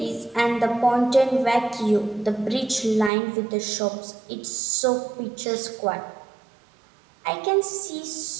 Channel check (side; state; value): left; drops out; at 3.1 s